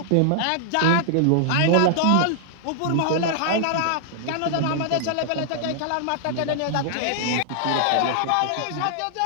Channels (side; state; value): both; different; correlation -0.01